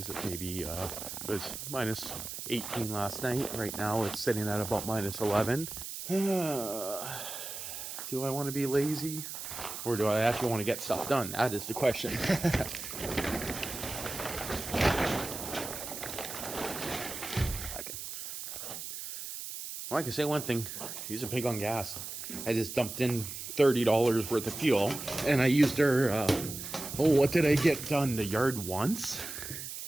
it? Maybe it was minus 18 last night. Right now it's sitting at about minus 11. Do I want to be lazy, or do I actually want to get stuff done? That is the question. Well, I can say one thing. She's a pig on gas. I just dumped in $30 worth of fuel, and I used her, what did I get done? The yard once?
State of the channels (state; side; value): noise; right; hiss, 8 dB below the sound